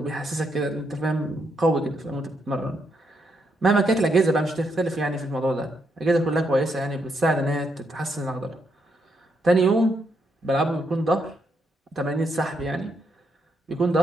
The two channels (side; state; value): both; normal; correlation 0.78